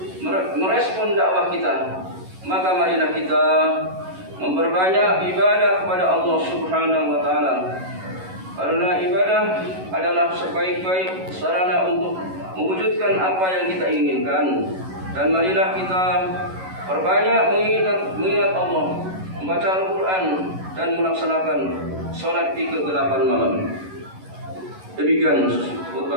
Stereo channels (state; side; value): late; left; 11 ms